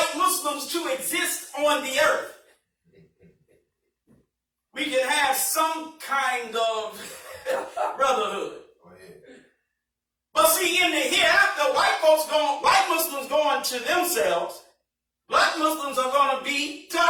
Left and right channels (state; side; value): identical; both; correlation 1.00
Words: Muslims to exist on the earth, we can have some kind of brotherhood. Go ahead. But see, in the hereafter, white Muslims going to themselves, black Muslims are going to be to